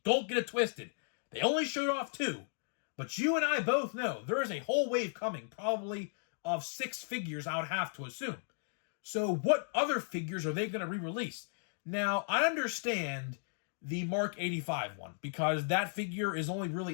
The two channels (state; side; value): silent; right; digital silence